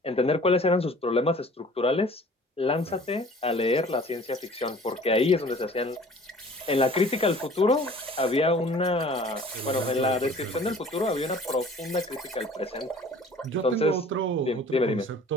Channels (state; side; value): normal; both; correlation 0.48